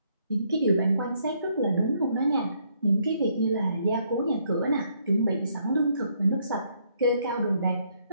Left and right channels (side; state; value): both; inverted; correlation -0.71